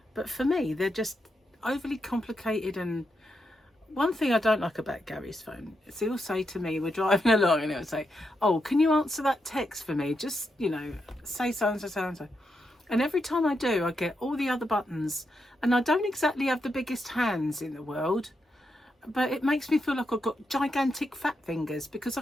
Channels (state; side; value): normal; both; correlation 0.84